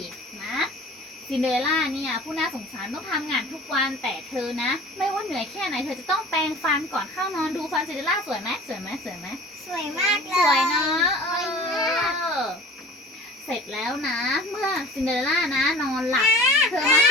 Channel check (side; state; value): both; normal; correlation 0.43